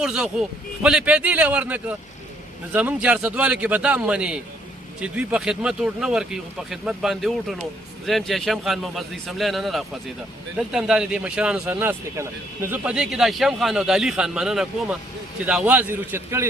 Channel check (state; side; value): normal; both; correlation 0.67